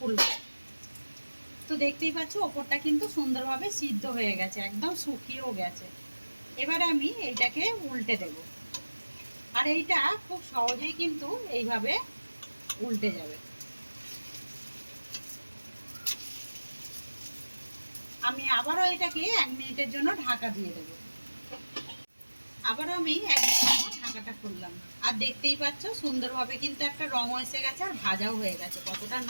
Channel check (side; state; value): both; inverted; correlation -1.00